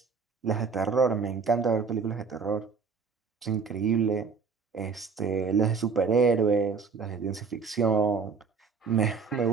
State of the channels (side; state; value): left; quieter; 5.2 dB